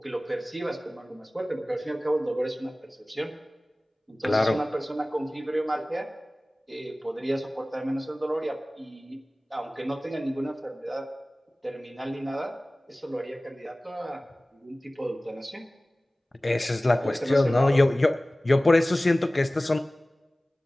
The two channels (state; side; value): normal; both; correlation 0.98